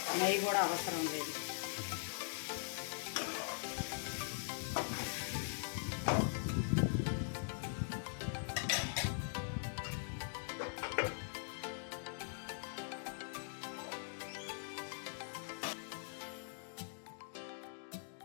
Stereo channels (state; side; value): silent; right; digital silence